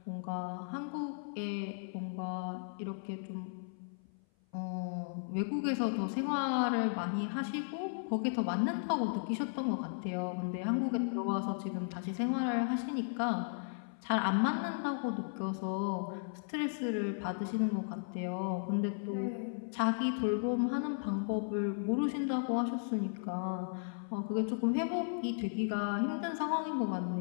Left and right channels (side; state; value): right; silent; 54 dB below the other